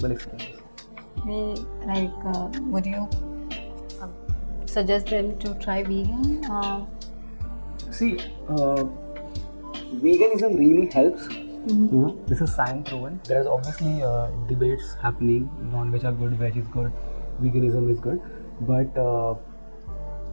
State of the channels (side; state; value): both; inverted; correlation -1.00